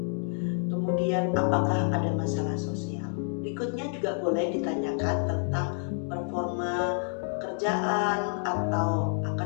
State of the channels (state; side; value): silent; right; 59 dB below the other